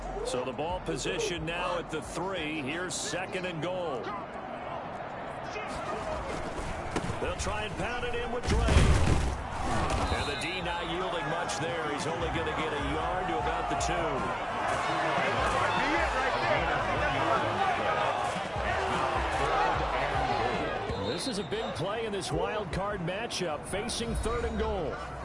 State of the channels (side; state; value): both; identical; correlation 1.00